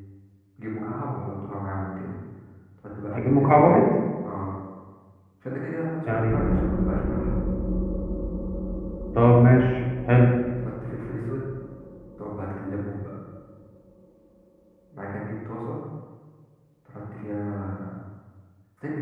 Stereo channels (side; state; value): both; identical; correlation 1.00